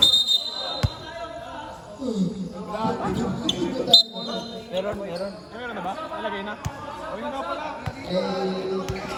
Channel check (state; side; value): identical; both; correlation 1.00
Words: Meron. Meron na ba? Nalagay na? O yun na pala.